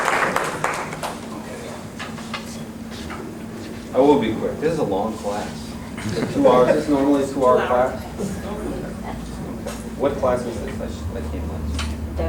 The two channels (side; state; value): both; identical; correlation 1.00